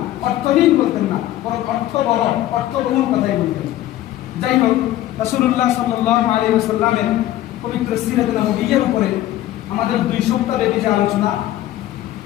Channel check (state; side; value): quieter; right; 14.1 dB